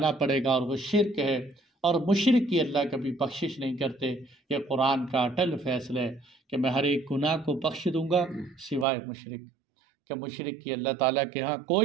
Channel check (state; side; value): drops out; left; at 8.8 s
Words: پڑے گا، اور وہ شرک ہے، اور مشرک کی اللہ کبھی بخشش نہیں کرتے۔ یہ قرآن کا اٹل فیصلہ ہے کہ میں ہر ایک گناہ کو بخش دوں گا سوائے مشرک، کہ مشرک کی اللہ تعالیٰ کے ہاں